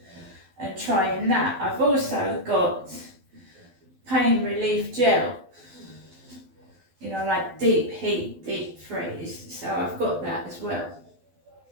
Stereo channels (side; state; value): left; late; 12 ms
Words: and trying that. I've also got pain relief gel, like deep heat, deep freeze. So I've got that as well.